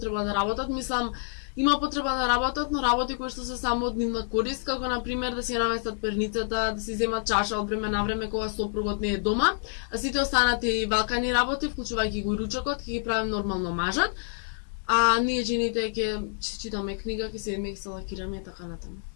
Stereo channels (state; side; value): silent; right; digital silence